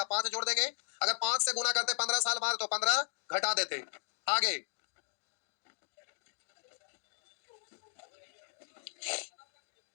5 जोड़ देंगे, अगर 5 से गुना करते 15 साल बाद तो 15 घटा देते। आगे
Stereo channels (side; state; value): right; silent; digital silence